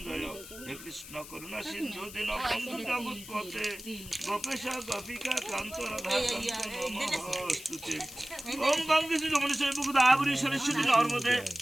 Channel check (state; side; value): noise; left; hiss, 14 dB below the sound